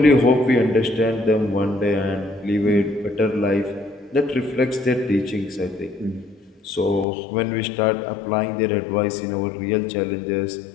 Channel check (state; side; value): drops out; right; at 7.1 s